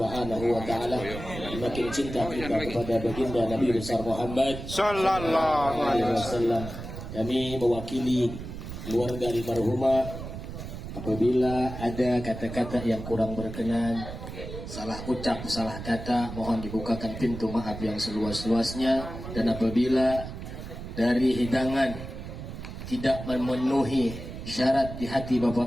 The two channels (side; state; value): right; noise; rumble, 9 dB below the sound